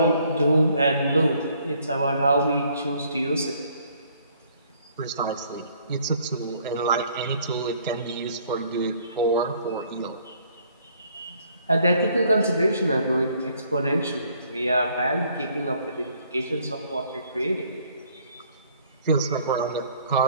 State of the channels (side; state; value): both; inverted; correlation -0.63